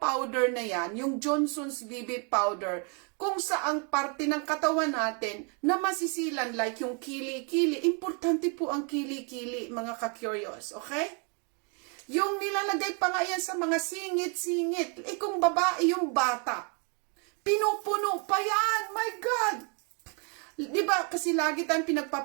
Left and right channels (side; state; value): left; quieter; 36.7 dB